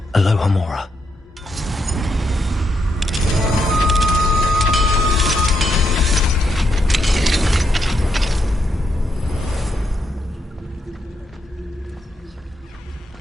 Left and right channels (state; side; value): normal; both; correlation 0.79